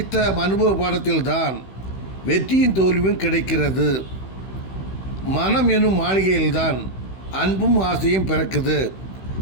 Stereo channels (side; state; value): right; late; 16 ms